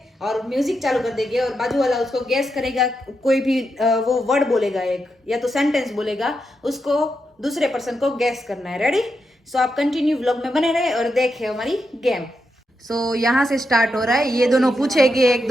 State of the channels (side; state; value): both; normal; correlation 0.85